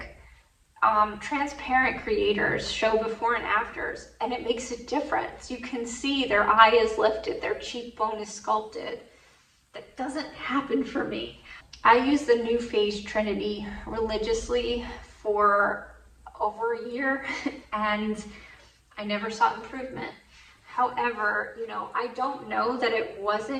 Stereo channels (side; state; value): both; identical; correlation 1.00